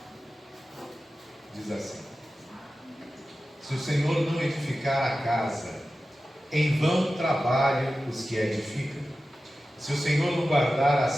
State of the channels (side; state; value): both; normal; correlation 0.94